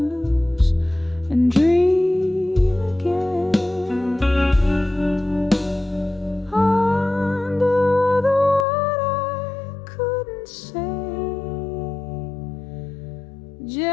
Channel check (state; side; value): drops out; right; at 8.7 s